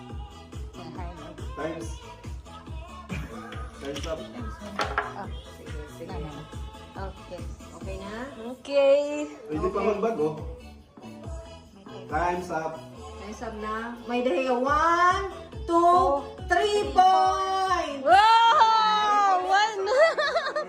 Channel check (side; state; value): both; identical; correlation 1.00